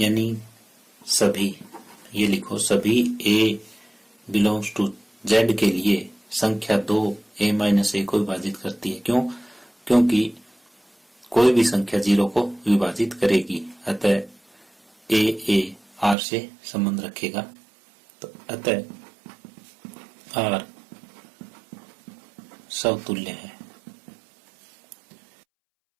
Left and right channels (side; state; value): left; drops out; at 16.2 s